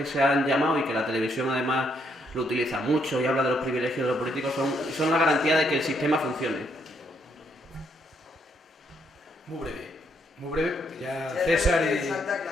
se han llamado y que la televisión además lo utiliza mucho y habla de los privilegios de los políticos, son la garantía de que el sistema funcione. Muy breve, porque ya César y...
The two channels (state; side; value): normal; both; correlation 0.74